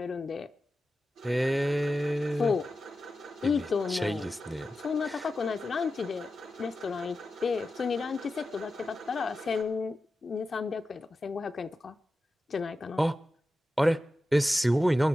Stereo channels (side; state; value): both; normal; correlation 0.92